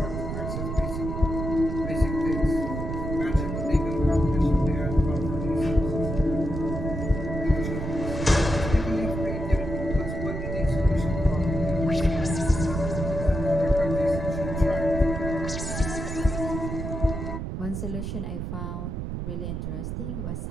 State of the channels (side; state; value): right; noise; rumble, 4 dB below the sound